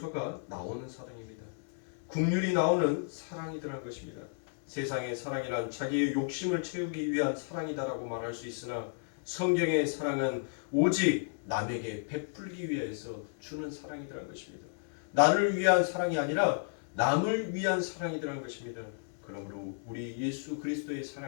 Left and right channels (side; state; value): right; silent; digital silence